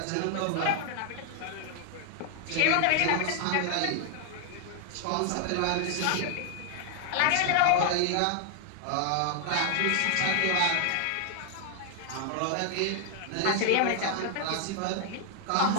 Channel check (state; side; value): different; both; correlation 0.00